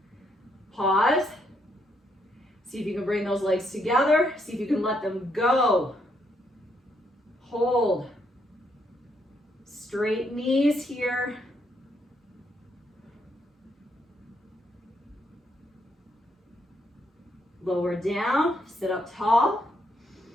Pause. See if you can bring those legs together. See if you can let them go. Hold. Straight knees here. Lower down, sit up tall.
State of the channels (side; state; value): both; normal; correlation 0.75